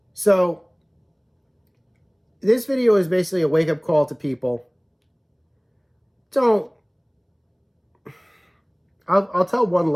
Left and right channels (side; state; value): both; identical; correlation 1.00